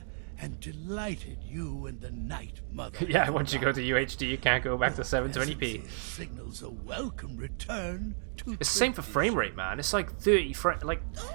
am delighted you and the Night Mother... Yeah, once you go to UHD, you can't go back to 720p. ...signals a welcome return to... It's the same for frame rate, man. It's like 30 frames. Like,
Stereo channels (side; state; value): left; silent; digital silence